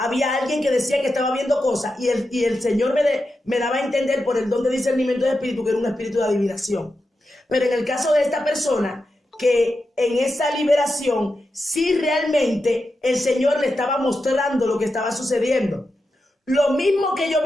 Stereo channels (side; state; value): both; normal; correlation 0.89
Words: alguien que decía que estaba viendo cosas y el Señor me daba a entender por el don de discernimiento de espíritu que era un espíritu de adivinación. Pero en el caso de esta persona, que en esa liberación sí realmente el Señor le estaba mostrando lo que estaba sucediendo. Lo mismo que yo